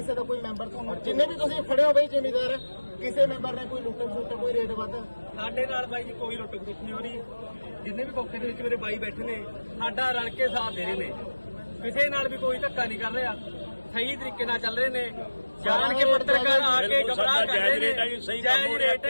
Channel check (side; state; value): both; inverted; correlation -1.00